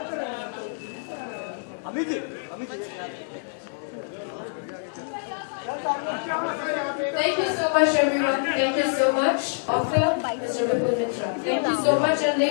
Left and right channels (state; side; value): silent; right; digital silence